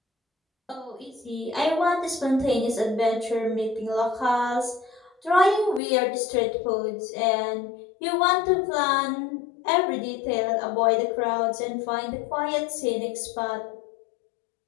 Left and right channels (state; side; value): drops out; right; at 5.8 s